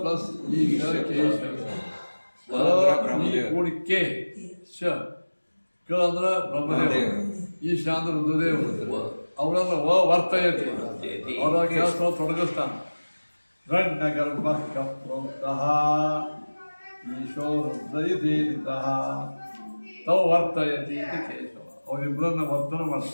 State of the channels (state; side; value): inverted; both; correlation -1.00